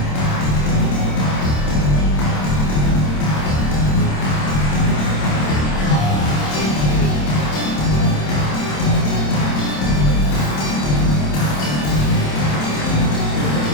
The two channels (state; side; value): late; right; 27 ms